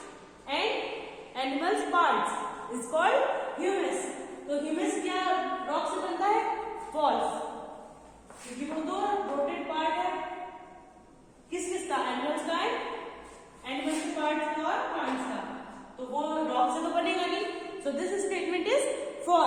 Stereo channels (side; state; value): both; identical; correlation 1.00